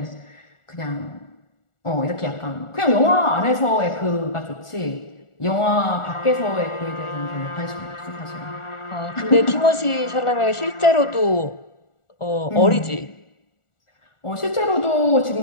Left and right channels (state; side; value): late; right; 1.4 ms